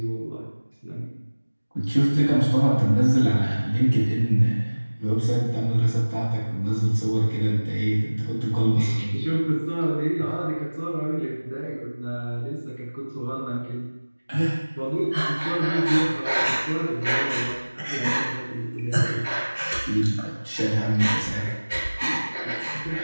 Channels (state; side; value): inverted; both; correlation -1.00